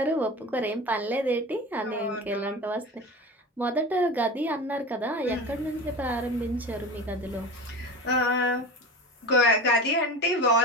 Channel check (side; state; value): both; normal; correlation 0.31